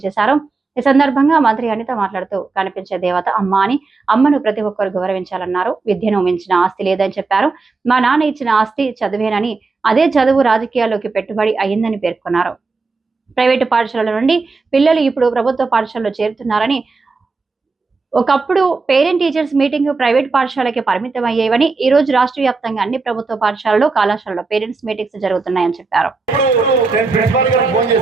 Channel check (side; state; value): left; quieter; 4.1 dB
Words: చేశారు. ఈ సందర్భంగా మంత్రి అనిత మాట్లాడుతూ కనిపించే దేవత అమ్మ అని, అమ్మను ప్రతి ఒక్కరు గౌరవించాలన్నారు. విద్యను మించిన ఆస్తి లేదని చెప్పారు. మా నాన్న ఇచ్చిన ఆస్తి చదివేనని, అదే చదువు రాజకీయాల్లోకి పెట్టుబడి అయ్యిందని పేర్కొన్నారు. ప్రైవేటు పాఠశాలల నుండి పిల్లలు ఇప్పుడు ప్రభుత్వ పాఠశాలలో చేరుతున్నారని, ఒకప్పుడు పేరెంట్ టీచర్స్ మీటింగ్ ప్రైవేట్ పాఠశాలకి పరిమితం అయ్యేవని, ఈ రోజు రాష్ట్ర వ్యాప్తంగా అన్ని ప్రభుత్వ పాఠశాలలో, కళాశాలలో పేరెంట్స్ మీటింగ్స్ జరుగుతున్నాయని చెప్పారు.